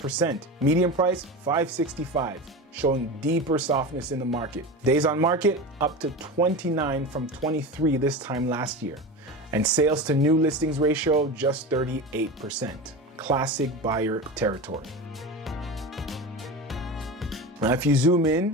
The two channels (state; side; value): normal; both; correlation 0.27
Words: Median price, $565,000, showing deeper softness in the market. Days on market, up to 29 from 23 this time last year. And sales to new listings ratio, just 38%. Classic buyer territory. Now, if you zoom